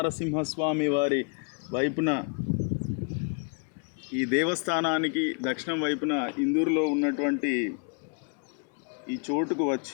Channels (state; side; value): quieter; right; 38.4 dB